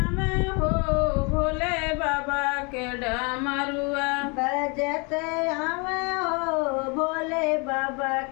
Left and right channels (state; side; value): quieter; right; 31.8 dB